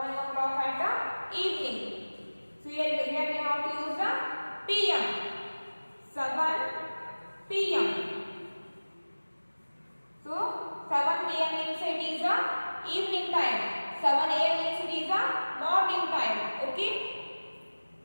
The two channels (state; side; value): inverted; both; correlation -1.00